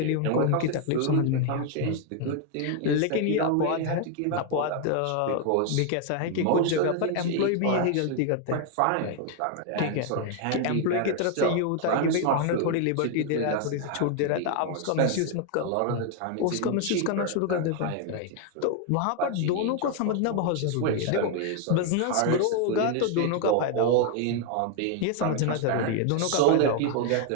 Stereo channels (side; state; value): both; different; correlation 0.00